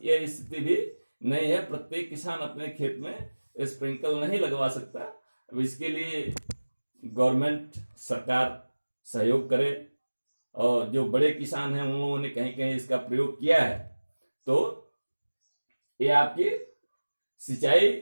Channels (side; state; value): both; inverted; correlation -1.00